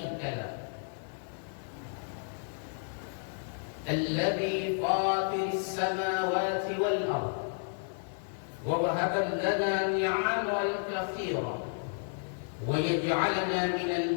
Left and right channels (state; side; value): silent; right; digital silence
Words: له الذي فاطر السماوات والأرض ووهب لنا نعمه الكثيرة ويجعلنا من